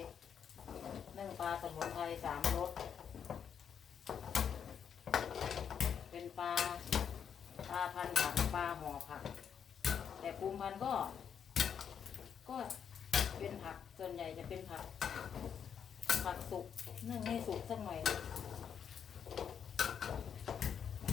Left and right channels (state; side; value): quieter; right; 7.8 dB